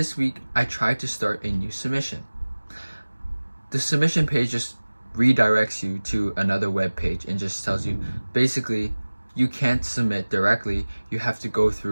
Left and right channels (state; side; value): inverted; both; correlation -1.00